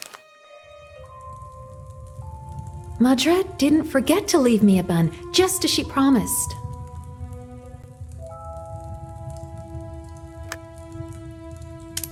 Madret didn't forget to leave me a bun, just as she promised.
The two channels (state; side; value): identical; both; correlation 1.00